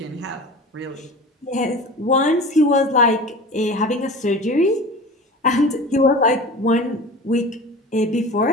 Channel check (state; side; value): normal; both; correlation 0.36